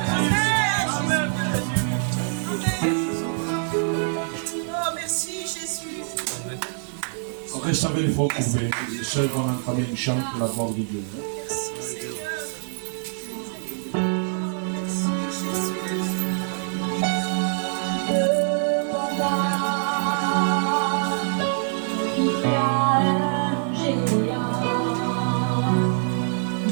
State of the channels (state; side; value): silent; left; 62 dB below the other